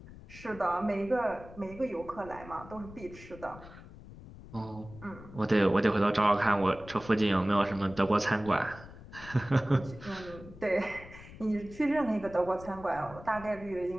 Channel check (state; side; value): noise; left; rumble, 17 dB below the sound